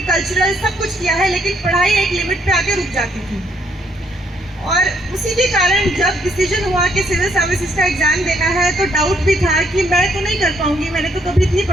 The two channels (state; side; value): normal; both; correlation 0.70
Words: कल्चरल सब कुछ किया है, लेकिन पढ़ाई एक लिमिट पे आके रुक जाती थी। और उसी के कारण जब डिसीजन हुआ कि सिविल सर्विसेज का एग्ज़ाम देना है तो डाउट भी था कि मैं तो नहीं कर पाऊंगी, मैंने तो कभी इतनी